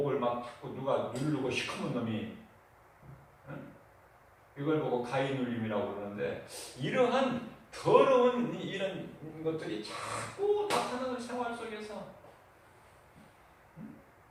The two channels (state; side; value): identical; both; correlation 1.00